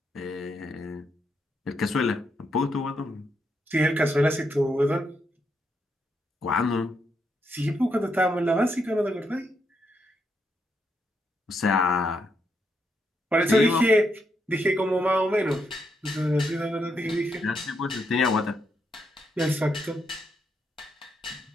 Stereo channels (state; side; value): normal; both; correlation 0.80